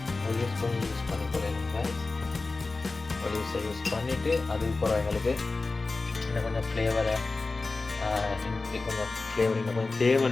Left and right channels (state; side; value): quieter; right; 3.6 dB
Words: யூஸ் பண்ணிக்கொள்ளலாம். ஒலிவ்ஸை யூஸ் பண்ணிவிட்டு அதுக்கப்புறம் எங்களுக்கு இன்னும் கொஞ்சம் ஃப்ளேவரை கொஞ்சம் ஃப்ளேவர் இன்னும் கொஞ்சம்